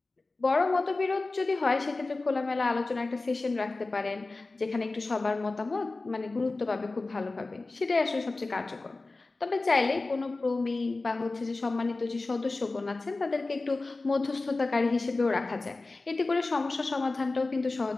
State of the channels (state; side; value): quieter; right; 3.4 dB